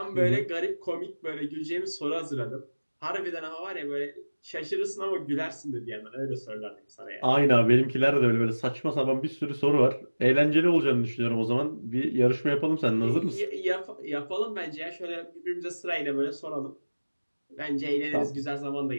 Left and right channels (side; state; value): both; inverted; correlation -1.00